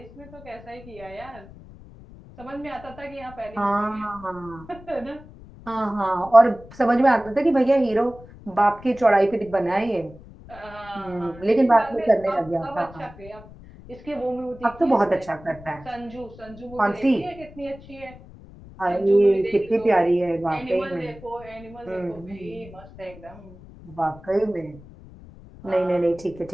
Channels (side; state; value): left; noise; rumble, 19 dB below the sound